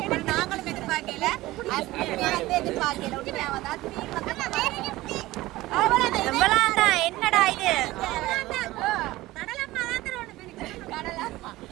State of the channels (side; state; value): left; quieter; 17.9 dB